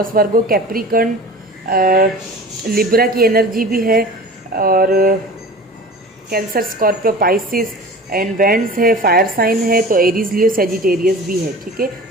वर्गो, कैप्रिकॉर्न, लिब्रा की एनर्जी भी है, और cancer, Scorpio, Pisces and vends है, फायर साइन है, तो एरीज, लियो, सेजिटेरियस भी है, ठीक है।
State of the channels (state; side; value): normal; both; correlation 0.39